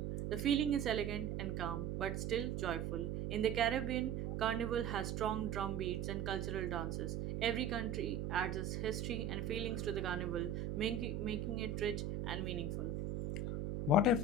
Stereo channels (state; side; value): noise; right; hum, 2 dB below the sound